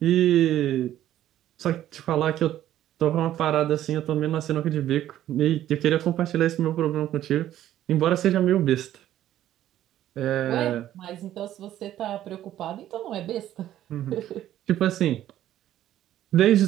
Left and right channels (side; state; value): left; quieter; 12.5 dB